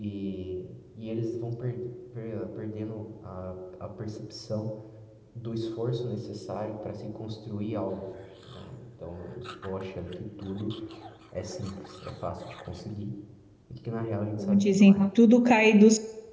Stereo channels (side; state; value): both; identical; correlation 1.00